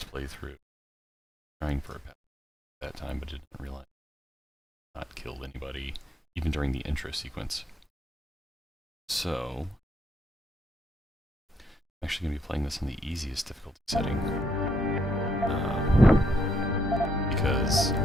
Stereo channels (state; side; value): normal; both; correlation 0.74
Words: playthrough. Trying for a path at that time, but didn't realize not killed anybody even during the intro sequence. So, I'm actually going to be playing this on the easiest difficulty setting. Because